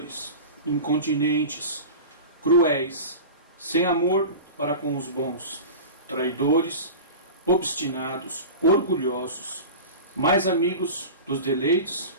incontinentes, cruéis, sem amor para com os bons, traidores, obstinados, orgulhosos, mais amigos dos deleites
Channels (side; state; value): both; inverted; correlation -0.31